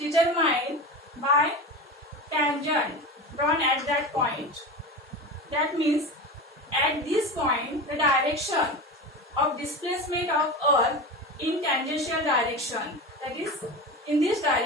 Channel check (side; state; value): both; normal; correlation 0.26